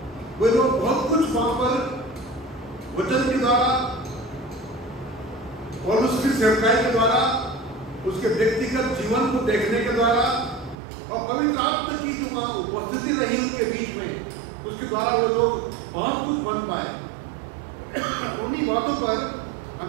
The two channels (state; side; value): drops out; left; at 10.8 s